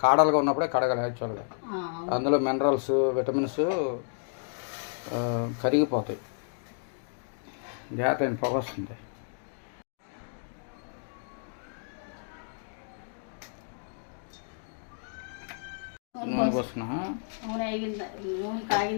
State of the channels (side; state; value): right; silent; digital silence